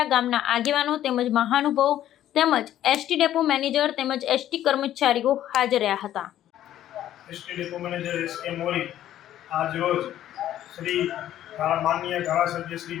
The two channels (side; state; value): right; quieter; 12.2 dB